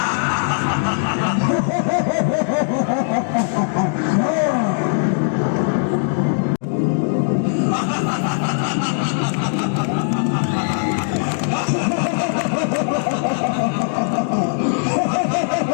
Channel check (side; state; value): right; silent; digital silence